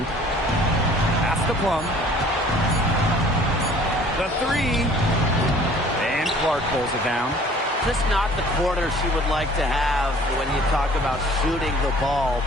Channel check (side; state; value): both; normal; correlation 0.52